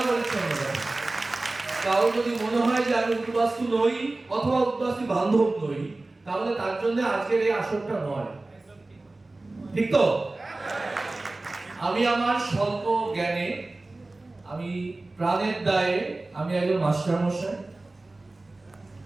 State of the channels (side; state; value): left; quieter; 3.0 dB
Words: পরিচ্ছন্নতা। কারো যদি মনে হয় যে আমি উদ্বাস্তু নই অথবা উদ্বাস্তু বান্ধব নই, তাহলে তার জন্য আজকের এই আসরটা নয়, ঠিক তো? আমি আমার স্বল্প জ্ঞানে, আমি প্রাণের দায়ে, আমি একজন মাস্টারমশাই,